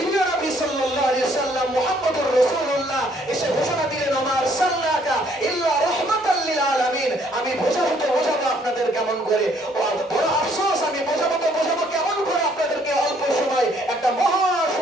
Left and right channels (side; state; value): both; normal; correlation 0.64